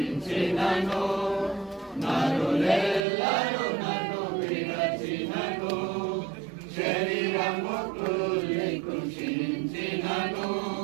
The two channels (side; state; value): left; drops out; at 3.0 s